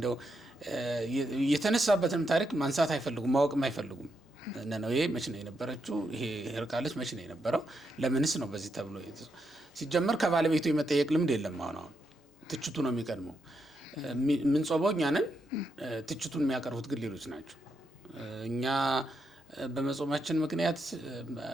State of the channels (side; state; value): both; normal; correlation 0.82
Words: የተነሳበትንም ታሪክ ማንሳት አይፈልጉም፣ ማወቅም አይፈልጉም። ነነዌ መች ነው የነበረችው? ይሄ ህርቃለች መች ነው የነበረው? ለምንስ ነው በዚህ ተብሎ ሲጀመር ከባለቤቱ የመጠየቅ ልምድ የለም። አሁን ትችቱ ነው የሚቀድመው። የምንጾመው እኛ ነን፣ ትችቱን የሚያቀርቡት ግን ሌሎች ናቸው። እኛ በመጾማችን ምክንያት